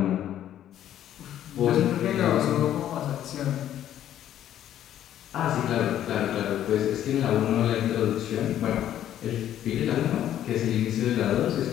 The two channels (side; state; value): right; quieter; 11.4 dB